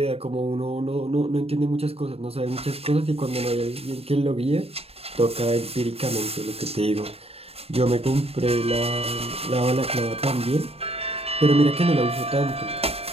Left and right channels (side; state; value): left; late; 0.29 ms